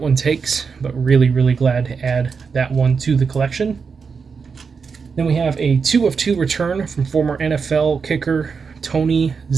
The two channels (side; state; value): left; quieter; 5.5 dB